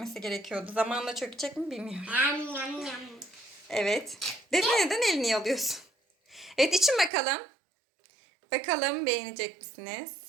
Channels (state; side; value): drops out; left; at 7.1 s